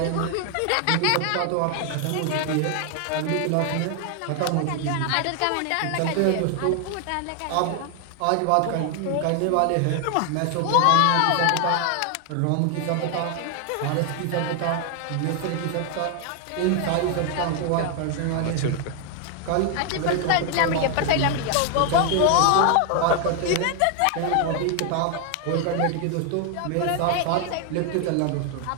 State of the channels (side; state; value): both; different; correlation 0.00